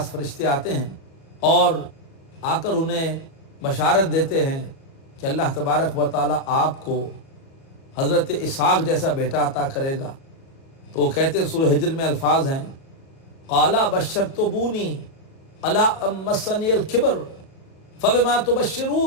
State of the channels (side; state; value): right; late; 37 ms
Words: فرشتے آتے ہیں اور آ کر انہیں بشارت دیتے ہیں کہ اللہ تبارک و تعالیٰ آپ کو حضرت اسحاق جیسا بیٹا عطا کرے گا۔ تو وہ کہتے ہیں، سورہ ہجر میں الفاظ ہیں، قالا بشرتمونی الا ام مسنی الکبر فبما